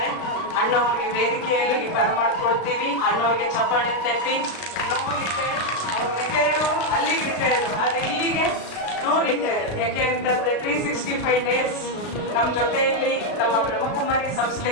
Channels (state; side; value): late; right; 36 ms